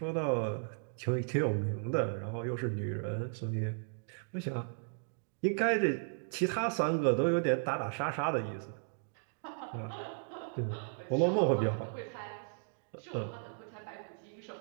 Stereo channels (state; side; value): silent; left; digital silence